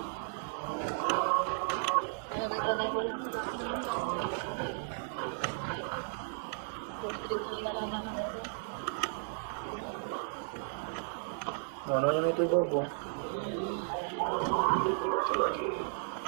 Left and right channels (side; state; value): left; silent; 55 dB below the other